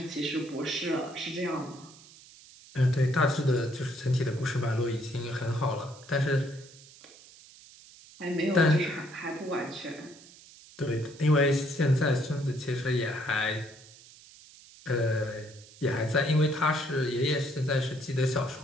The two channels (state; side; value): noise; right; hiss, 22 dB below the sound